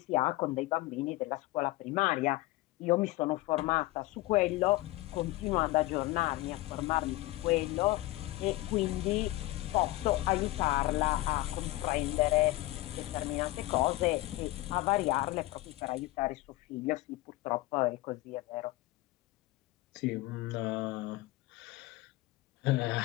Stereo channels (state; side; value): quieter; right; 19.0 dB